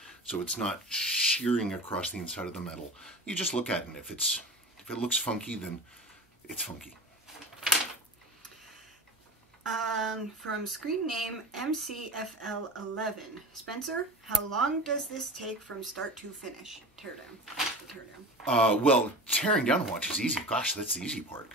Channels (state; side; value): normal; both; correlation 0.33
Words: so it's not shearing across the inside of the metal. You just look at it, and if it looks funky, then it's funky. From screen name MCFL11. Spencer, how long does this take from start to finish? Teardown. Well, tearing down a watch is easy. Gosh, that's the easy part.